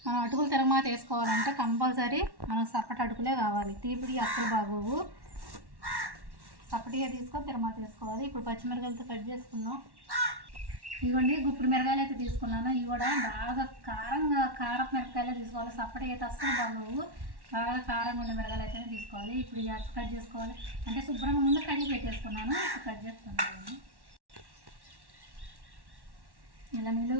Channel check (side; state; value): left; late; 1.1 ms